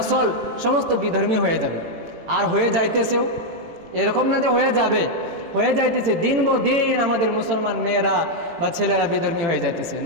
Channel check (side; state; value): left; late; 18 ms